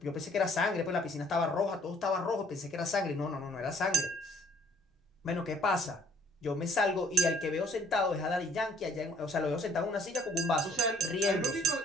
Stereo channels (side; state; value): both; normal; correlation 0.59